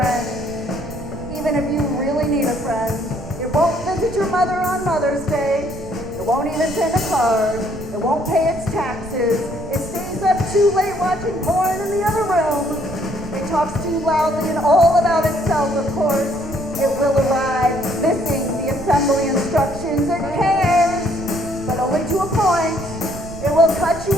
even if you really need a friend. It won't visit your mother on Mother's Day. It won't even send a card. It won't pay its taxes. It stays up too late watching porn in the other room. It talks too loudly and all about itself, of course. It will arrive missing the assembly instructions. It cares, but only to a point. It will cut you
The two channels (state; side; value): noise; right; rumble, 13 dB below the sound